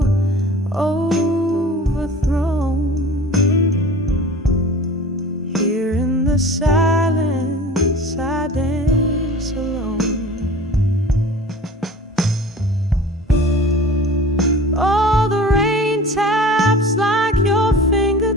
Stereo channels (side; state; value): both; normal; correlation 0.41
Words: overthrown. Here in the silence, I dance alone. All the rain taps like your